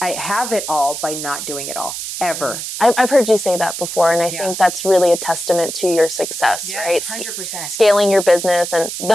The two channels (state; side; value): noise; right; hiss, 6 dB below the sound